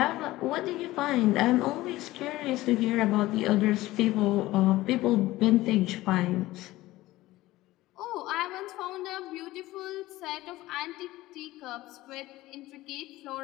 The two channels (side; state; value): right; quieter; 17.4 dB